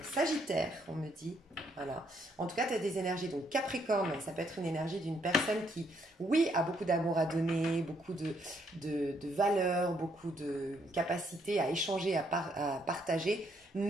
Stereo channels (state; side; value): normal; both; correlation 0.71